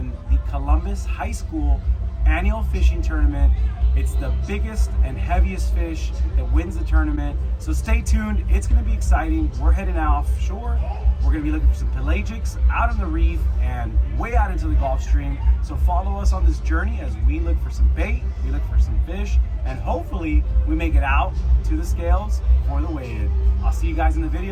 the Columbus High School annual fishing tournament. It's the biggest and heaviest fish that wins the tournament. So stay tuned. It's going to be exciting. We're heading offshore. We're going to be looking for some pelagics out on the reef and way out into the Gulf Stream. So follow us on this journey as we look for some bait, we look for some fish, and hopefully we make it out to the scales for the weigh-in. I'll see you guys in the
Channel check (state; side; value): identical; both; correlation 1.00